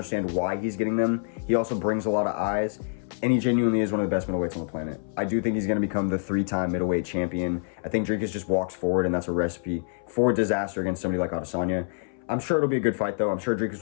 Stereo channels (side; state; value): right; silent; 61 dB below the other